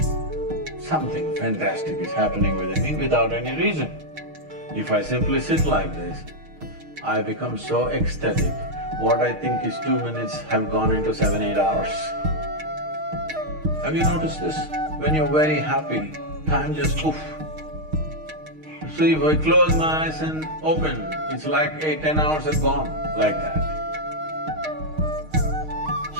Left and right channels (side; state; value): left; late; 6.4 ms